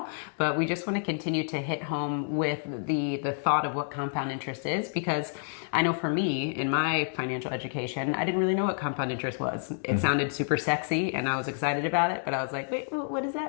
but we just want to continue to hit home with the thought of what compound interest is, because I know for me, in my financial education, I didn't really know what compound interest was. It sounded super sexy and I was excited about it, but I was like, wait, what is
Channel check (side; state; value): right; silent; digital silence